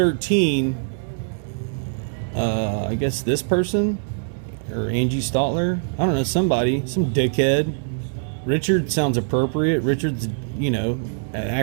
I guess this person or Angie Stotler, I don't know, somebody, some dickhead. Richard sounds appropriate. Richard's, you know, an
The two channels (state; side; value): silent; left; digital silence